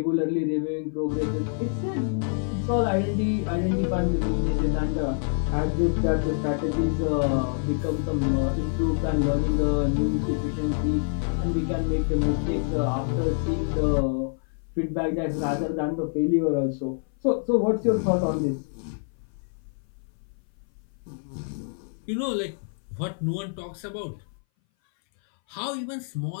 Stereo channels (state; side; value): silent; right; 59 dB below the other